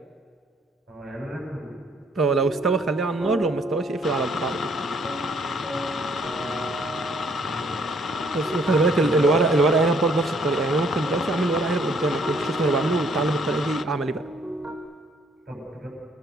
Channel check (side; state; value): both; normal; correlation 0.64